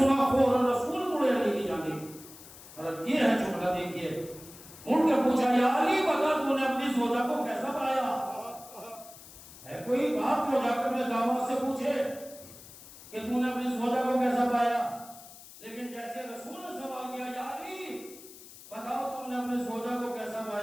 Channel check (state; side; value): noise; left; hiss, 18 dB below the sound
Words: فوراً رسول مڑے علی کی جانب, مطلب یہ ہے جملہ دیکھیے, ان کے پوچھا یا علی بتا تو نے اپنی زوجہ کو کیسا پایا؟ ہے کوئی بات جو جا کر اپنے داماد سے پوچھے کہ تو نے اپنی زوجہ کو کیسا پایا؟ لیکن جیسے رسول نے سوال کیا یا علی بتاؤ تم نے اپنے زوجہ کو کیسا